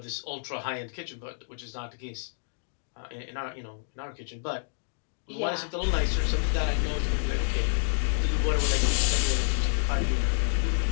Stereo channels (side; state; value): right; silent; digital silence